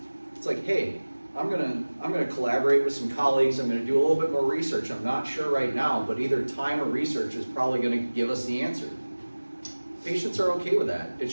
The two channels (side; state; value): both; inverted; correlation -1.00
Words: It's like, hey, I'm gonna collaborate with some colleagues, I'm gonna do a little bit more research. I'm not sure right now, but either time or research is probably gonna give us the answer. Patients are okay with that. It